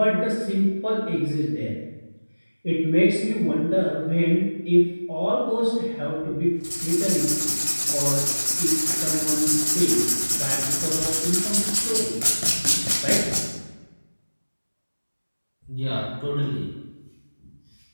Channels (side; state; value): both; inverted; correlation -1.00